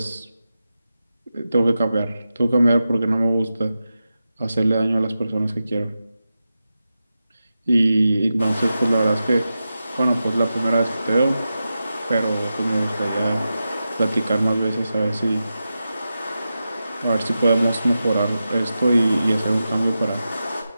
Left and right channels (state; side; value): inverted; both; correlation -0.91